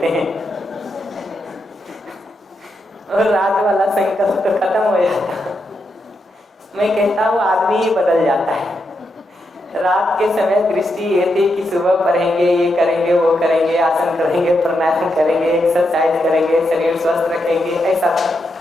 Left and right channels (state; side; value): normal; both; correlation 0.83